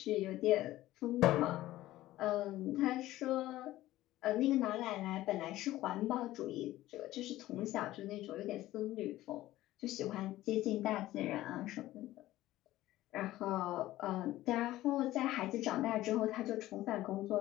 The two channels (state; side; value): quieter; right; 15.7 dB